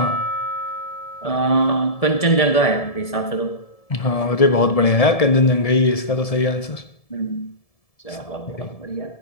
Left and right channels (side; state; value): right; late; 1.7 ms